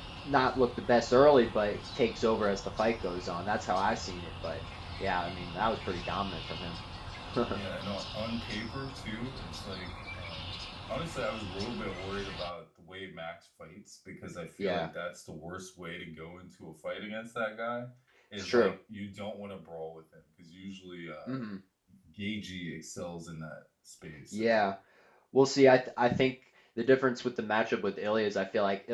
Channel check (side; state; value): both; identical; correlation 1.00